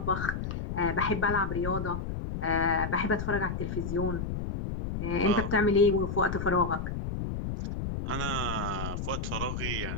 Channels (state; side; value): noise; left; rumble, 4 dB below the sound